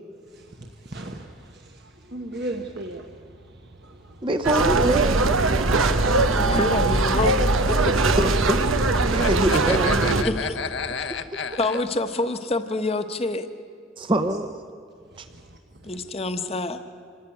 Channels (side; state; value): both; normal; correlation 0.37